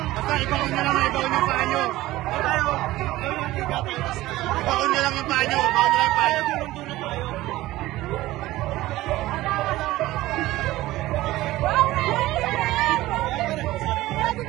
Basta ibaon nyo lang yung paa nyo. Ibaon nyo lang yung paa nyo.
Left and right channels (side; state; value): left; quieter; 17.0 dB